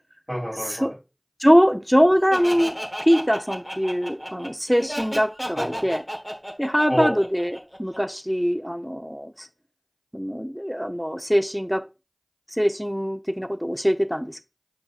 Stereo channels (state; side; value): identical; both; correlation 1.00